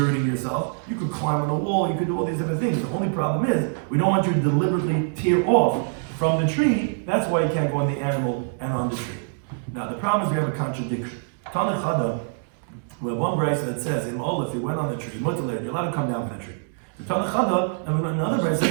yourself. You could climb on a wall, you could do all these different things. The only problem is, we don't want you to deliberately tear off from the tree. That's why you can't go on the animal and on the tree. Now the problem is we have a contradiction. Tanachada, we have one brayso that says, if you went on the tree, you're allowed to come down from the tree. The Tanachada, and we have another brayso that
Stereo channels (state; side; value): silent; left; digital silence